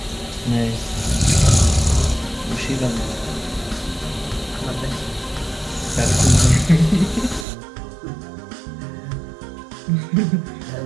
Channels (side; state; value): left; drops out; at 7.5 s